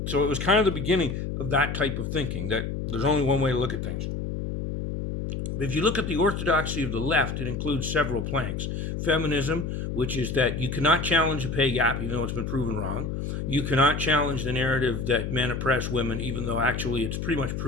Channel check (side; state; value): left; noise; hum, 4 dB below the sound